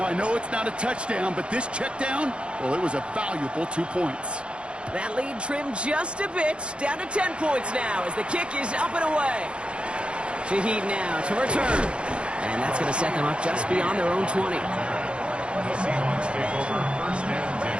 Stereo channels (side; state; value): left; late; 0.057 ms